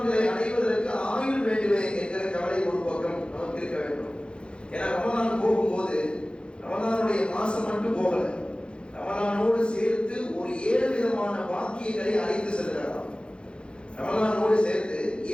அடைவதற்கு ஆயுள் வேண்டுமே என்கிற கவலை ஒரு பக்கம் நமக்கு இருக்க வேண்டும். ஏன்னா ரமலான் போகும்போது ரமலானுடைய மாசம் மட்டும் போகல, ரமலானோடு சேர்த்து ஒரு 7 விதமான வாக்கியங்களை அழைத்து செல்கிறாராம். ரமலானோடு சேர்த்து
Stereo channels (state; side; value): late; right; 0.055 ms